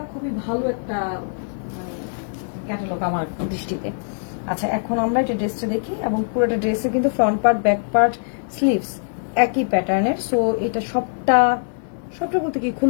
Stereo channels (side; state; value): right; silent; digital silence